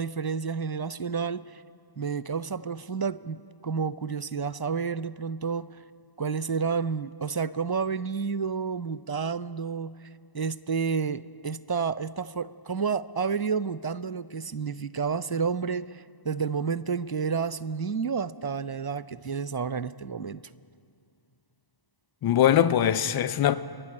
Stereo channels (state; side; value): late; right; 1.0 ms